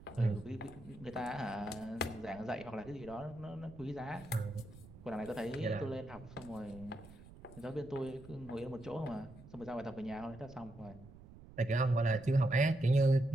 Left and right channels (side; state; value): right; noise; rumble, 18 dB below the sound